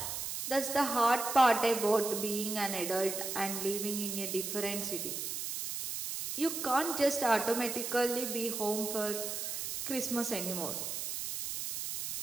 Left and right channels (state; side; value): noise; right; hiss, 4 dB below the sound